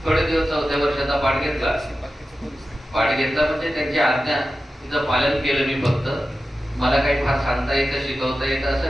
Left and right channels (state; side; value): normal; both; correlation 0.93